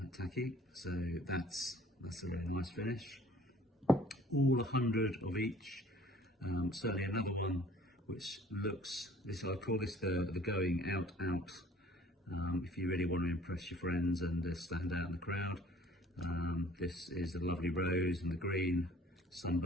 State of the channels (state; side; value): normal; both; correlation 0.53